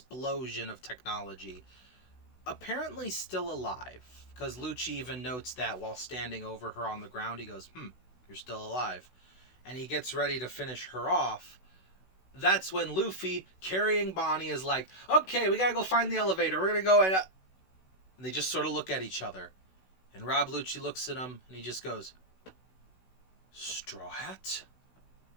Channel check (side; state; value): right; late; 16 ms